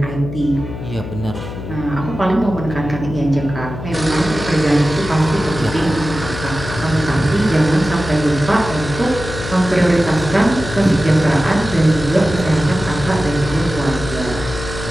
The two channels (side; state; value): left; noise; hum, 9 dB below the sound